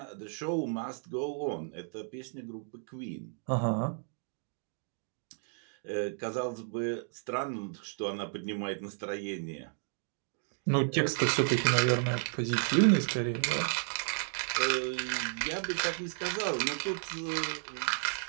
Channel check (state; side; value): silent; left; 56 dB below the other